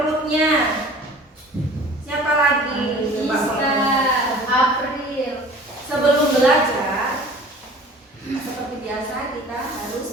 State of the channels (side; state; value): both; normal; correlation 0.45